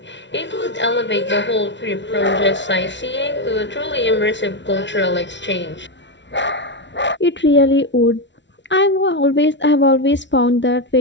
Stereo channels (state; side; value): late; right; 0.52 ms